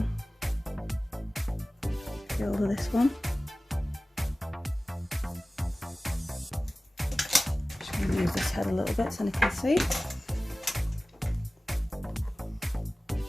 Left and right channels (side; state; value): both; normal; correlation 0.97